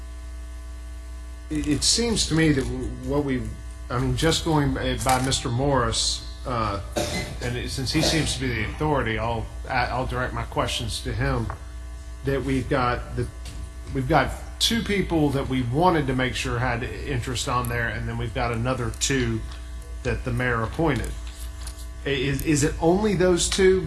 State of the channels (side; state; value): both; identical; correlation 1.00